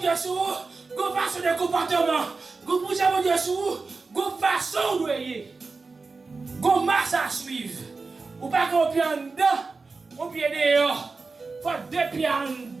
sur go façon de comportement. Pour jouer mon Dieu sur go façon de voyer, go marche à suivre. Ou pas qu'on pied en dedans, on pied dehors. Faut deux pieds en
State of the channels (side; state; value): left; quieter; 4.1 dB